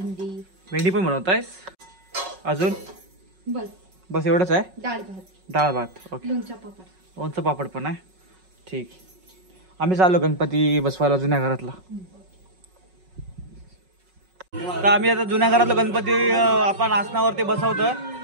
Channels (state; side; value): late; left; 5.4 ms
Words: भेंडी पण बनवतायस. अजून बस बस एवढंच आहे. डाळ भात. डाळ भात. ओके. लोणचं पापड. लोणचं पापड पण आहे. ठीक. आम्ही चाललो गणपती बसवायला जुन्या घरातला. तर आम्ही आता जुन्या घरातलं गणपती आपण आसनावरती बसवतोय.